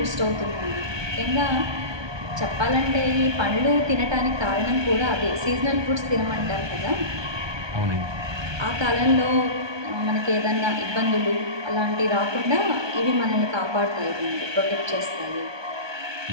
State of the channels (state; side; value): late; left; 1.2 ms